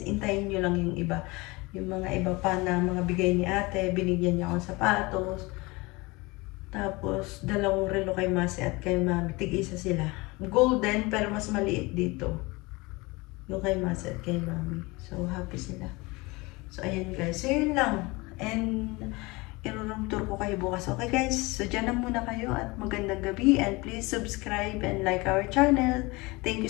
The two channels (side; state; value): right; quieter; 24.0 dB